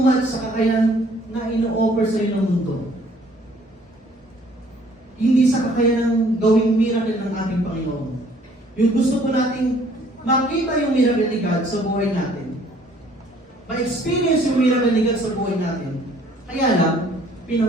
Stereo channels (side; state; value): both; normal; correlation 0.59